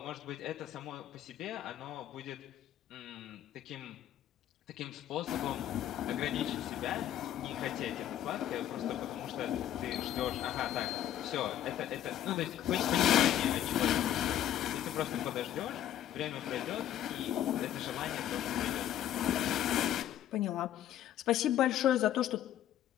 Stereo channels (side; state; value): right; quieter; 11.4 dB